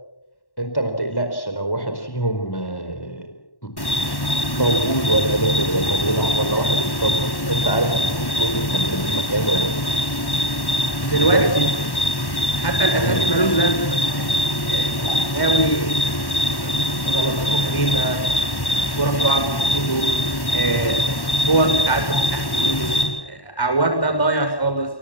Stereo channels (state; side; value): late; right; 1.1 ms